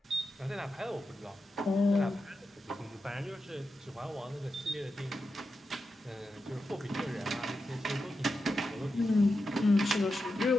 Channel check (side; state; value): both; normal; correlation 0.89